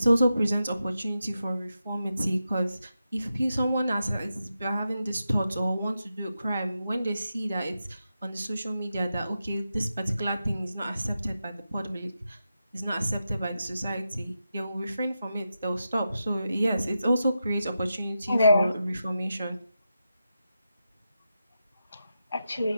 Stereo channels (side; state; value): both; inverted; correlation -0.89